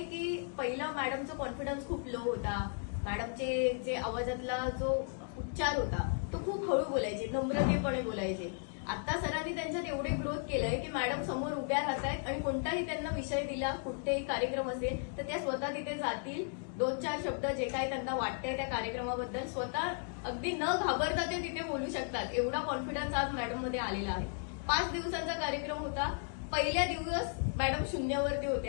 की पहिला मॅडमचा कॉन्फिडन्स खूप लो होता. मॅडमचे जे आवाजातला जो उच्चार होता तो खूप हळू बोलायचे, नम्रतेपणे बोलायचे. आता सरांनी त्यांच्यात एवढे ग्रोथ केलंय की मॅडम समोर उभ्या राहतायत आणि कोणताही त्यांना विषय दिला, कुठेही कार्यक्रम असेल तर त्या स्वतः तिथे जातील, 2-4 शब्द जे काय त्यांना वाटतंय त्या कार्यक्रमाबद्दल स्वतः अगदी न घाबरता ते तिथे बोलू शकतात. एवढा कॉन्फिडन्स आज मॅडम मध्ये आलेला आहे. 5 दिवसांचा कार्यक्रम होता. पहिल्या दिवस मॅडम शून्यावरती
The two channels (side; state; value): right; silent; 54 dB below the other